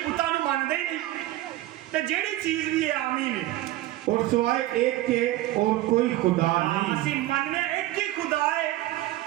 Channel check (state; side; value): quieter; left; 16.0 dB